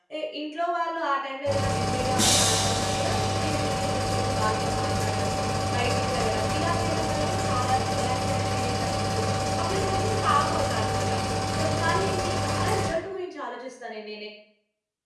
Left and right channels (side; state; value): both; identical; correlation 1.00